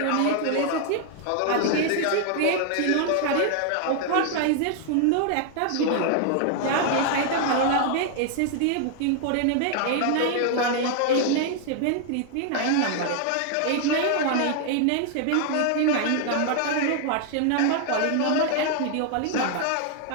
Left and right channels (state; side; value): different; both; correlation 0.00